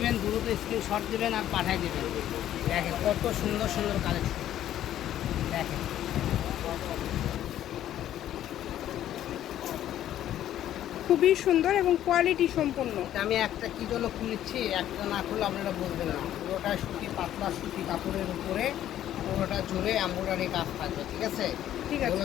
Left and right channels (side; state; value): right; quieter; 11.9 dB